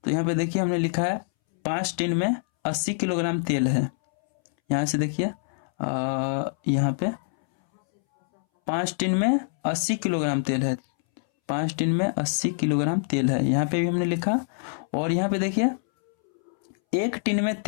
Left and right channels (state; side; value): silent; right; 62 dB below the other